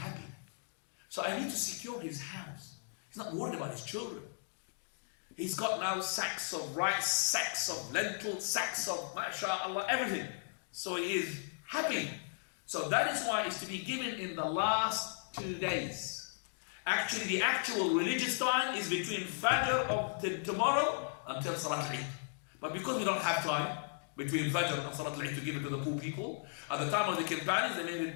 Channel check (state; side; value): silent; right; digital silence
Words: So I need to secure his house. He's not worried about his children. He's got now sacks of rice, sacks of lentils, sacks of mashallah, everything. So he is happy. So that is why it's to be given in the last 2 days. Actually, the actual religious time is between Fajr of tomorrow until Salat al-Eid. But because we don't have time between Fajr and Salat al-Eid to give it to the poor people, at the time of the companions, they made